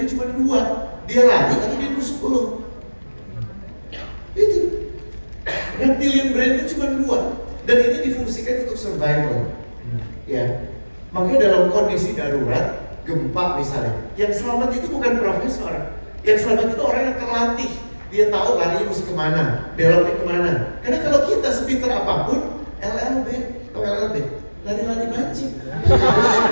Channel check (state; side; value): inverted; both; correlation -1.00